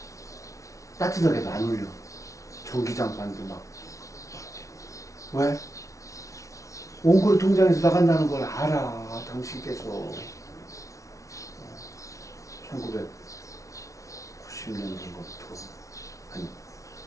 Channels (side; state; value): right; late; 0.15 ms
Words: 따뜻하게도 안 올려. 전기장판도 막. 왜? 원고리 통장에서 나간다는 걸 알아. 당신께서 1990년도부터